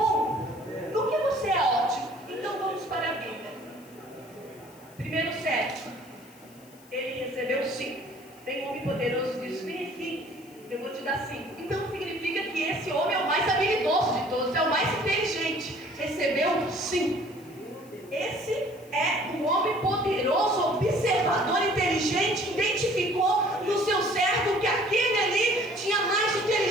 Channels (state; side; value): noise; left; hiss, 25 dB below the sound